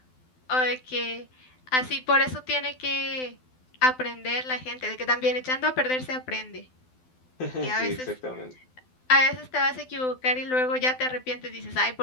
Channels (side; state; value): right; late; 12 ms